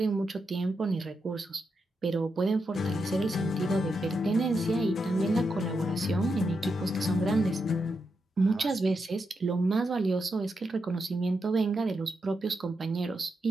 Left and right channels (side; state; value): both; normal; correlation 0.85